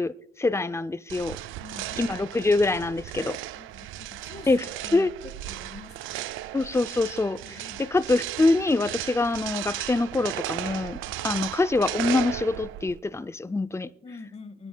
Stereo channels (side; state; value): both; normal; correlation 0.78